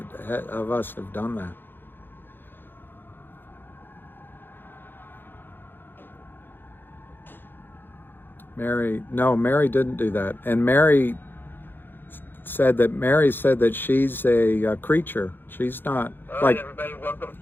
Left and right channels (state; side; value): late; right; 0.098 ms